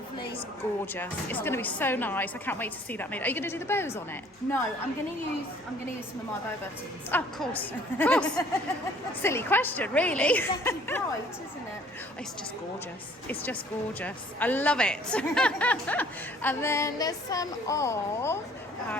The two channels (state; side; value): normal; both; correlation 0.56